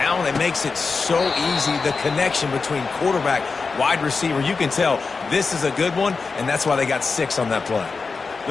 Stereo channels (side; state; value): right; quieter; 4.5 dB